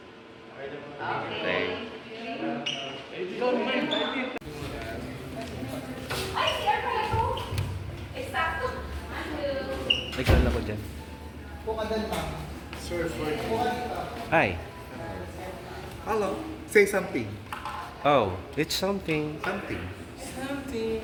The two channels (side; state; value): both; identical; correlation 1.00